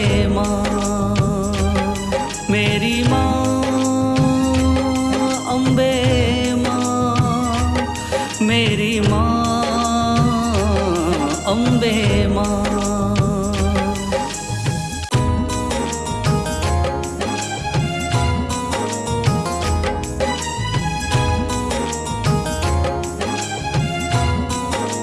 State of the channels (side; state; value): both; identical; correlation 1.00